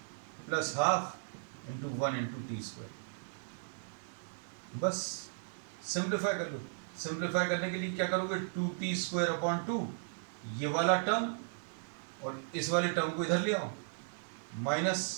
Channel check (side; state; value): left; silent; digital silence